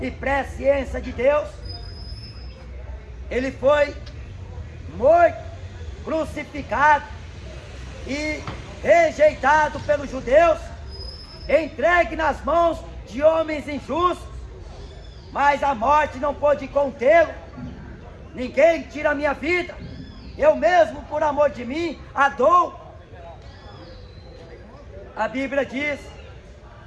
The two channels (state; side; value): identical; both; correlation 1.00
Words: e presciência de Deus. Ele foi morto, crucificado e rejeitado pelos judeus, entregue nas mãos de homens injustos, mas a morte não pôde contê-lo. Ninguém tira a minha vida, eu mesmo, por amor de mim, a dou. A Bíblia diz: